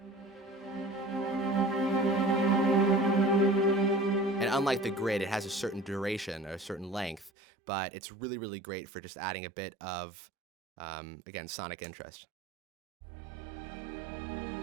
And unlike the grid, it has a certain duration or a certain length, but it's really great for just adding a bit of, again, sonic interest.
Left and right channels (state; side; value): drops out; left; at 7.3 s